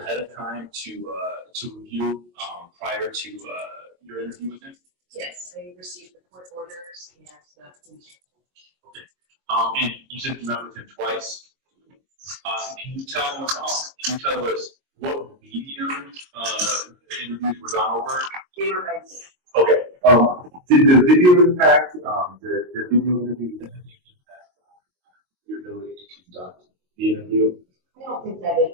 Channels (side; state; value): left; late; 22 ms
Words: of time to review prior to your interview with him? Yes, I received the court orders and the police report. Okay, and you said you met with him twice. Can you tell us what medium the interviews were done over? They were by Zoom. Okay. Did the video impact the video interview impact your ability to conduct the interview? I don't think that it